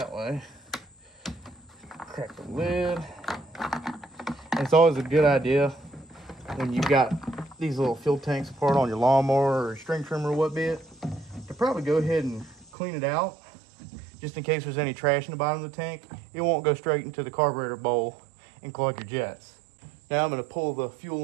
way, crack the lid. And it's always a good idea when you got these little fuel tanks apart on your lawnmower or string trimmer or what be it, to probably go ahead and clean it out just in case there's any trash in the bottom of the tank. It won't go straight into the carburetor bowl and clog your jets. Now I'm going to pull the fuel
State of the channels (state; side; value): drops out; left; at 12.7 s